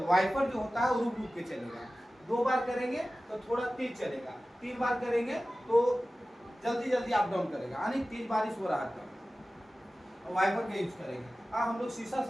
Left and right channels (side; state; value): both; normal; correlation 0.96